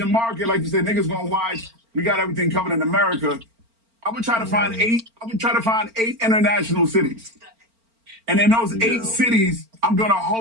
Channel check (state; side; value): late; left; 4.4 ms